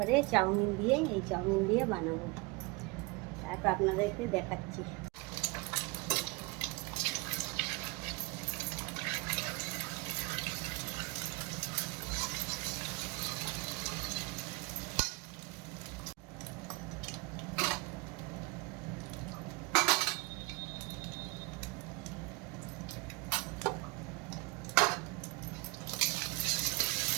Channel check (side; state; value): left; quieter; 25.6 dB